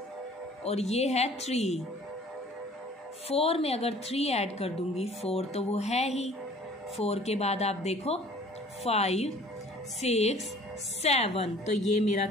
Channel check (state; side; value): normal; both; correlation 0.51